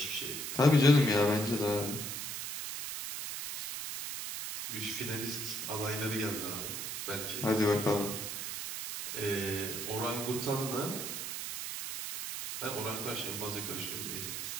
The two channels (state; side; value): noise; right; hiss, 5 dB below the sound